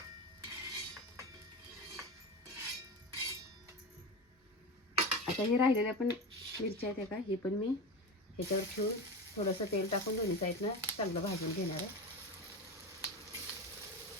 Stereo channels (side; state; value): both; normal; correlation 0.23